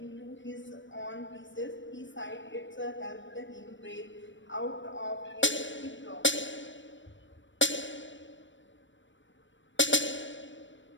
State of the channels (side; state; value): right; late; 0.55 ms